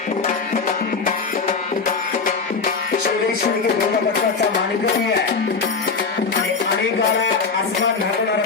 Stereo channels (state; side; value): quieter; right; 4.9 dB